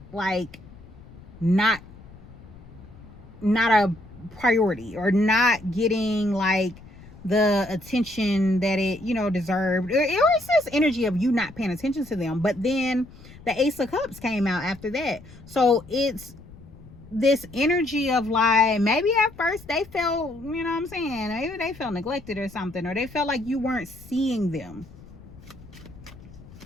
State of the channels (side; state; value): left; noise; rumble, 19 dB below the sound